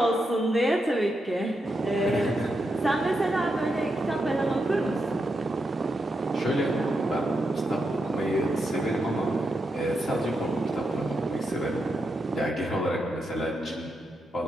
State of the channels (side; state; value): both; normal; correlation 0.84